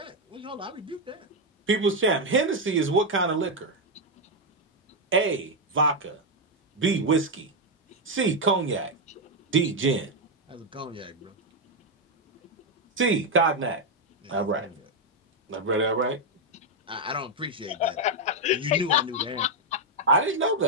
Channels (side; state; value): both; normal; correlation 0.02